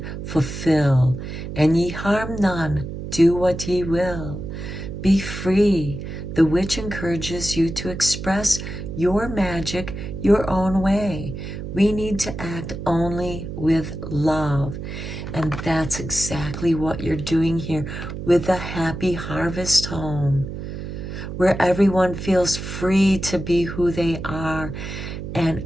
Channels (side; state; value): right; noise; hum, 7 dB below the sound